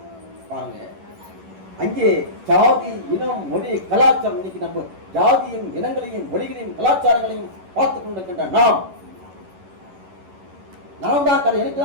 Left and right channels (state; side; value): late; left; 11 ms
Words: பாருங்க, அங்கே ஜாதி, இனம், மொழி, கலாச்சாரம், இன்னைக்கு நம்ம ஜாதியும் இனங்களையும் மொழிகளையும் கலாச்சாரங்களையும் பார்த்துக் கொண்டிருக்கின்ற நாம் தான் எனக்கு